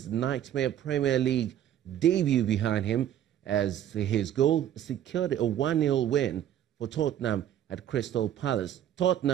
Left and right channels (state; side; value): quieter; left; 11.0 dB